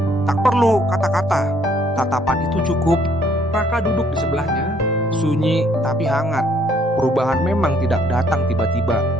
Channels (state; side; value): normal; both; correlation 0.65